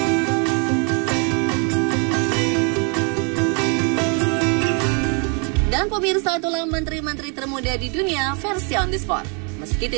Dan pemirsa, itulah menteri-menteri termuda di dunia versi On The Spot. Meski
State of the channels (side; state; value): left; quieter; 36.3 dB